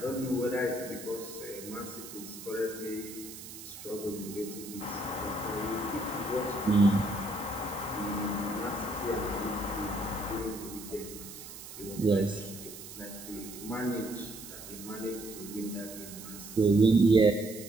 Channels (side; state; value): right; noise; hiss, 13 dB below the sound